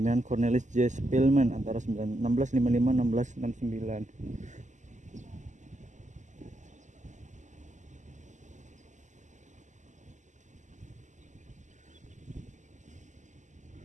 Cornelis J. Spillman antara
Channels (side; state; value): left; late; 0.35 ms